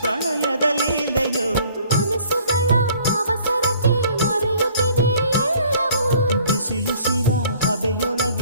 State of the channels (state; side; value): inverted; both; correlation -0.56